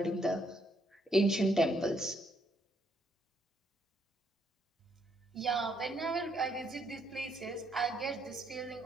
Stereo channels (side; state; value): both; normal; correlation 0.73